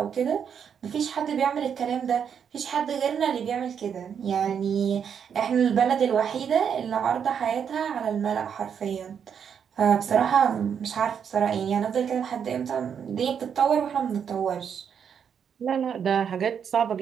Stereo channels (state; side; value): quieter; left; 7.6 dB